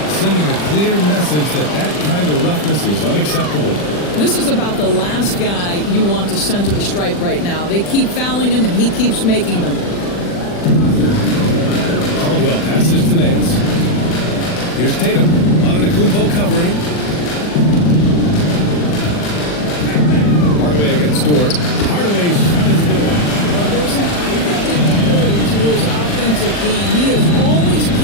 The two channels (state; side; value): late; right; 40 ms